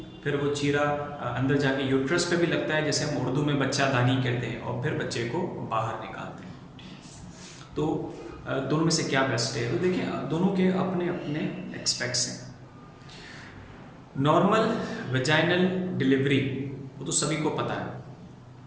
फिर वो चीरा अंदर जाके यूट्रस पे भी लगता है, जैसे हम उर्दू में बच्चा दानी कहते हैं, और फिर बच्चे को बाहर निकालते हैं। तो दोनों में से क्या बेस्ट है? तो देखिए, दोनों के अपने अपने एक्सपेक्ट्स हैं। नॉर्मल वेजाइनल डिलीवरी वो तो सभी को पता है,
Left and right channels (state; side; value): identical; both; correlation 1.00